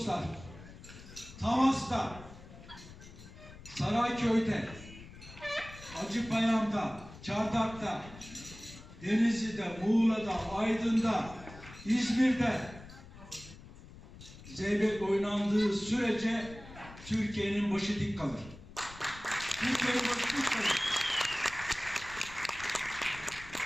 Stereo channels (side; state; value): left; noise; rumble, 17 dB below the sound